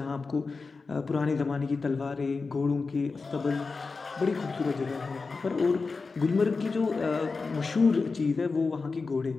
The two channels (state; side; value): quieter; right; 4.3 dB